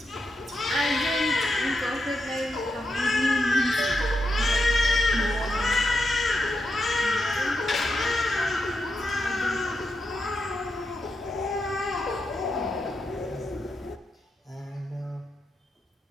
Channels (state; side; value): normal; both; correlation 0.85